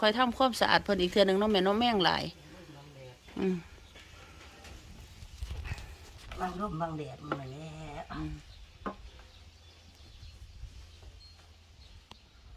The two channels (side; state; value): both; identical; correlation 1.00